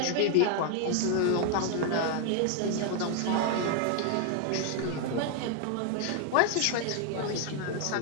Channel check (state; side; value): different; both; correlation 0.00